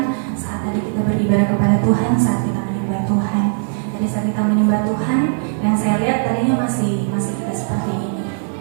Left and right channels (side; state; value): left; silent; 60 dB below the other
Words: saat tadi kita beribadah kepada Tuhan, saat kita menyembah Tuhan. Jadi saat kita menyembah Tuhan, yang saya lihat tadinya masih kita seperti ini.